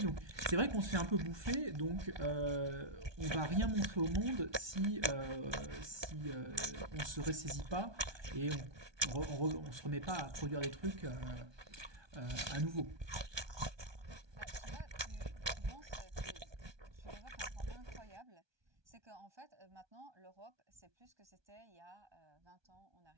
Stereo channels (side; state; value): left; late; 1.2 ms